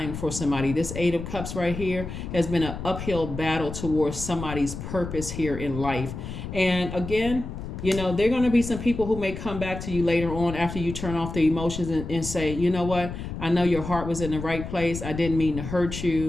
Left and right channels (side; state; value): left; noise; rumble, 8 dB below the sound